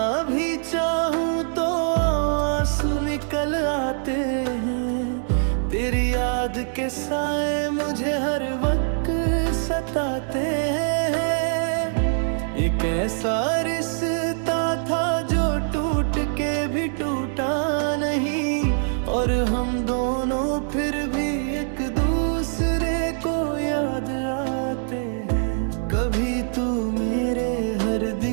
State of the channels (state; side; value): silent; left; digital silence